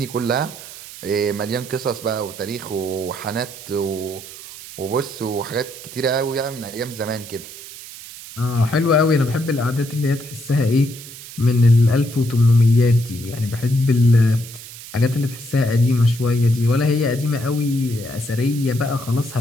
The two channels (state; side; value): noise; right; hiss, 15 dB below the sound